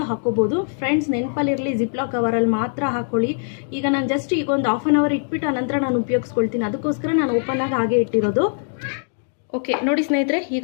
ಹಾಕೋಬೋದು. ಫ್ರೆಂಡ್ಸ್, ನೆನಪಲ್ಲಿರಲಿ, ಜಿಪ್ಲಾಕ್ ಕವರಲ್ಲಿ ಮಾತ್ರ ಹಾಕೊಳ್ಳಿ. ಈಗ ನಾನು ಜಸ್ಟ್ ಈಗ ಒಂದು 1/2 ಅವರ್ ಇಟ್ಬಿಟ್ಟು ಆನಂತರ ನಾನು ಉಪಯೋಗಿಸ್ಕೊಳ್ತೀನಿ. ಅದಕ್ಕೋಸ್ಕರ ನಾನು ಓಪನ್ ಆಗಿ ಹಾಗೆ ಇಟ್ಟಿರೋದು. ಓಕೆ ನೋಡಿ ಸ್ನೇಹಿತರೆ,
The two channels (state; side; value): silent; right; digital silence